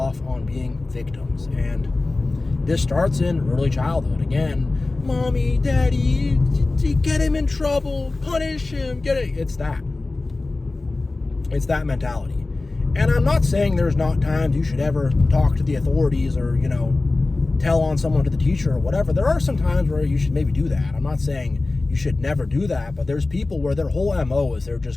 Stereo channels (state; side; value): quieter; right; 3.3 dB